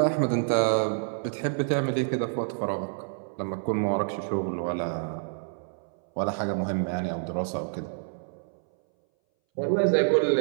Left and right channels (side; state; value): left; silent; 60 dB below the other